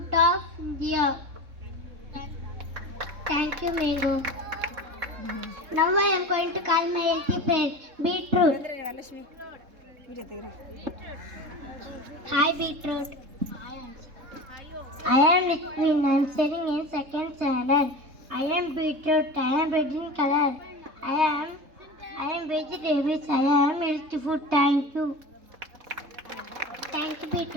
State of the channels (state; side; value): late; left; 3.7 ms